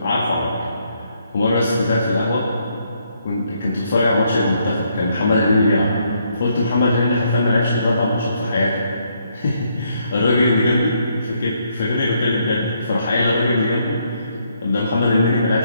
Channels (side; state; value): both; inverted; correlation -0.73